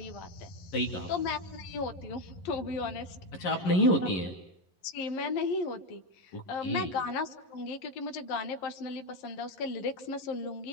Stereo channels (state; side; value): late; right; 11 ms